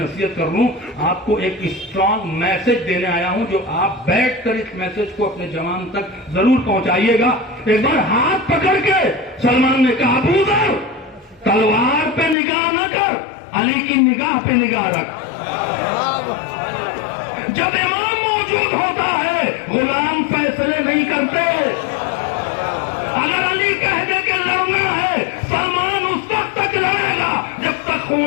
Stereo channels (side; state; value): right; drops out; at 12.4 s